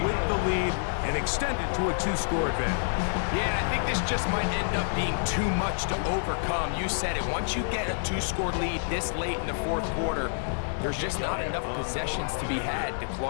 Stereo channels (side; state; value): right; silent; digital silence